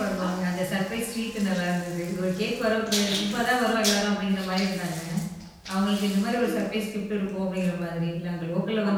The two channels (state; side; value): identical; both; correlation 1.00